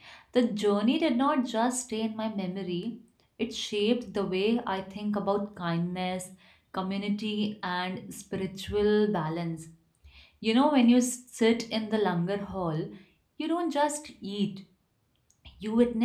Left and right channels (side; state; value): both; identical; correlation 1.00